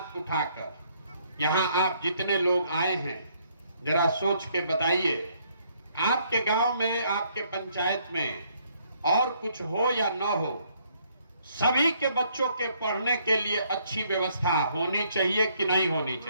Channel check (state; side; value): inverted; both; correlation -0.68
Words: उठाकर। यहाँ आप जितने लोग आए हैं जरा सोच के बताइए, आपके गांव में, आपके पंचायत में और कुछ हो या ना हो, सभी के बच्चों के पढ़ने के लिए अच्छी व्यवस्था होनी चाहिए कि नहीं होनी